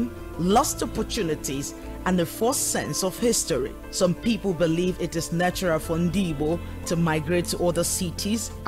lost opportunities, and a false sense of history. Some people believe it is natural for Ndigbo to migrate to other cities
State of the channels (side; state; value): both; identical; correlation 1.00